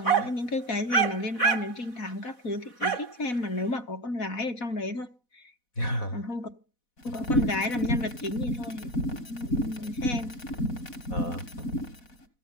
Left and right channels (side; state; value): right; late; 4.1 ms